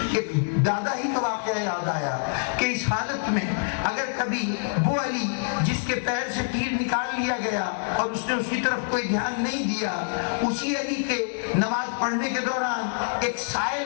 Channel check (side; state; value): right; silent; digital silence